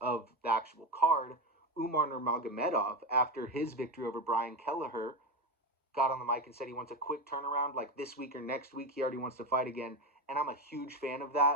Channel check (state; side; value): normal; both; correlation 0.17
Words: the actual card, Umar Nurmagomedov, after his victory over Brian Kelleher, got on the mic and said he wants a quick turnaround, like this week or next week. He already wants to fight again, and I'm a huge fan of